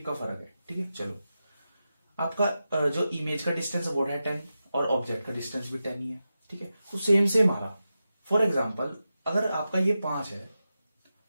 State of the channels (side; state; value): both; inverted; correlation -0.91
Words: का फर्क है। ठीक है, चलो आपका जो इमेज का डिस्टेंस है वो है 10 और ऑब्जेक्ट का डिस्टेंस भी 10 ही है। ठीक है, तो सेम आ रहा। फॉर एग्जाम्पल अगर आपका ये 5 है